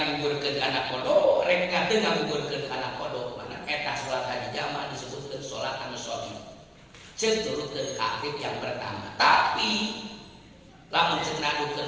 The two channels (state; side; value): identical; both; correlation 1.00